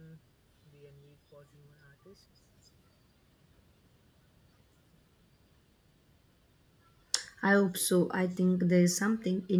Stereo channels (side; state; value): both; identical; correlation 1.00